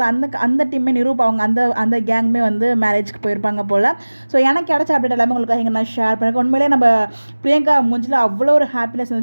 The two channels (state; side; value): inverted; both; correlation -1.00